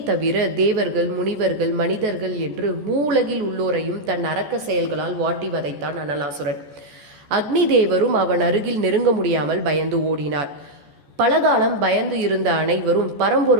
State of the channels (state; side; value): late; left; 14 ms